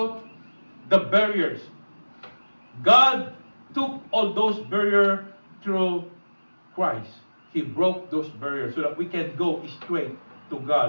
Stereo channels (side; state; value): both; inverted; correlation -1.00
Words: the barriers. God took all those barriers through Christ. He broke those barriers so that we can go straight to